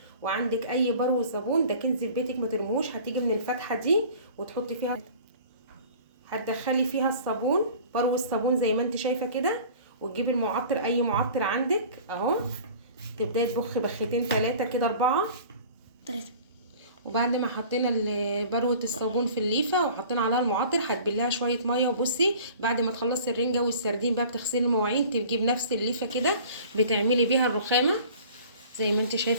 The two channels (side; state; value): both; inverted; correlation -0.45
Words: وعندك اي برو صابون ده كنز في بيتك ما ترموش، هتيجي من الفتحه دي وتحطي فيها، هتدخلي فيها الصابون، برو الصابون زي ما انت شايفه كده، وتجيبي المعطر اي معطر عندك اهو، تبداي تبخي بختين 3 كده 4 3. وبعد ما حطينا بروه الصابون في الليفه وحطينا عليها المعطر، هتبليها شويه ميه. وبصي بعد ما تخلصي الرنجه والسردين بقى بتغسلي المواعين، تجيبي بنفس الليفه كده بتعملي بيها الرخامه زي ما انت